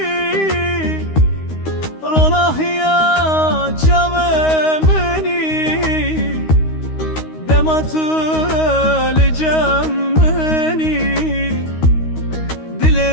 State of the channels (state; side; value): late; right; 13 ms